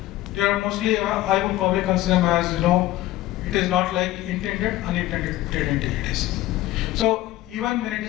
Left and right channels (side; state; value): right; quieter; 16.0 dB